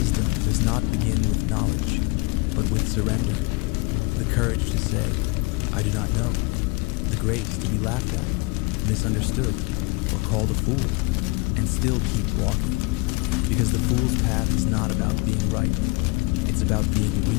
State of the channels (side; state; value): right; quieter; 26.3 dB